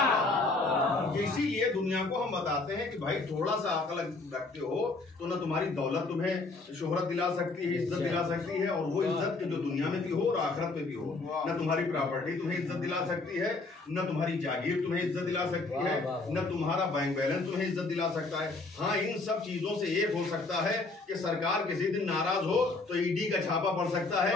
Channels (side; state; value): right; quieter; 3.5 dB